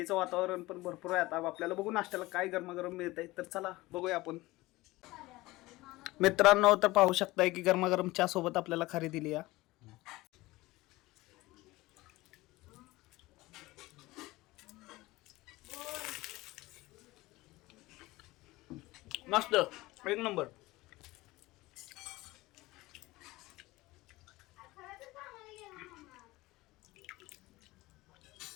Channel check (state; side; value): quieter; right; 19.7 dB